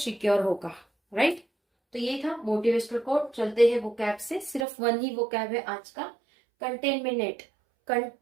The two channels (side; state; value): left; drops out; at 4.7 s